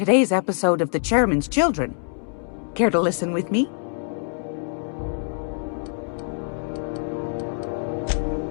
episode of The Chairman's Children. Care to listen with me?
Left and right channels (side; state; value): right; silent; digital silence